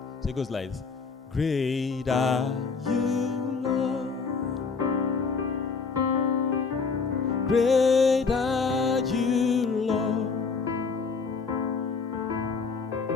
it goes like this. Great are you, Lord. Great are you, Lord.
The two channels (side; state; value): right; quieter; 5.0 dB